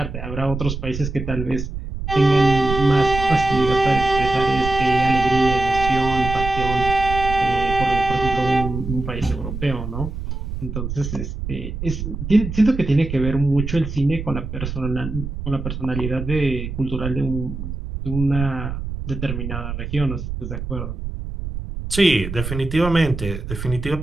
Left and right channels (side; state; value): right; noise; rumble, 6 dB below the sound